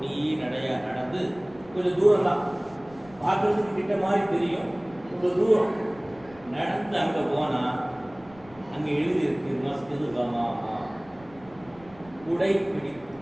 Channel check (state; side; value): noise; left; rumble, 24 dB below the sound